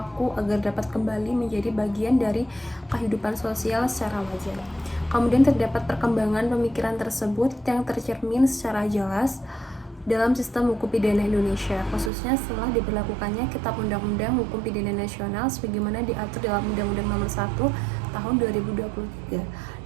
agar dapat kembali menjadi bagian dari kehidupan sosial secara wajar. Kemudian terdapat perkembangan pemikiran tersebut yang tercermin secara jelas dalam sistem hukum pidana Indonesia, khususnya setelah diberlakukannya Kitab Undang-Undang Hukum Pidana Nasional sebagaimana diatur dalam Undang-Undang Nomor 1 Tahun 2023.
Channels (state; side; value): drops out; left; at 12.1 s